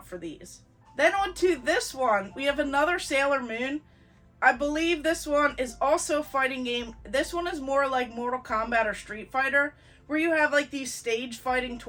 for these. Then on to this one, we have another Sailor Moon. I believe this one is also a fighting game. This one is more like Mortal Kombat or Street Fighter, where you have like these stage fighting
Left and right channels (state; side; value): identical; both; correlation 1.00